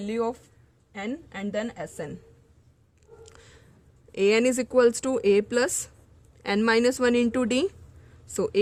of N and then SN. AN is equals to A plus N minus 1 into D. So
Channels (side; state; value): both; identical; correlation 1.00